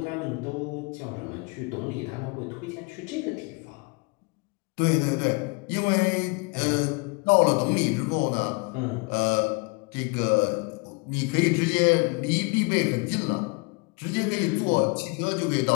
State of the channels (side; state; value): right; quieter; 29.5 dB